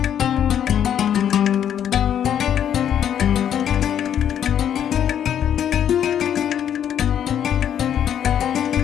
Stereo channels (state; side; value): quieter; right; 9.6 dB